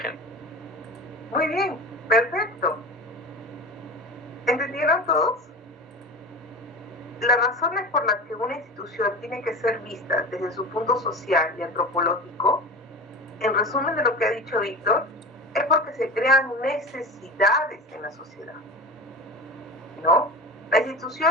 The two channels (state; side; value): normal; both; correlation 0.30